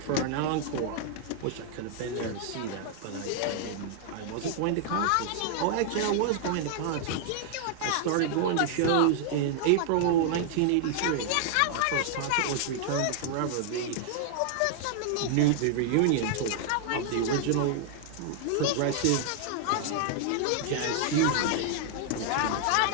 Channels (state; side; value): different; both; correlation 0.00